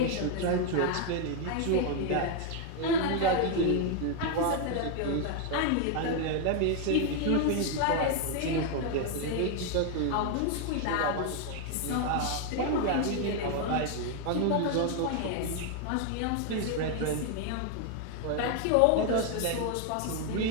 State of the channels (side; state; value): both; different; correlation 0.00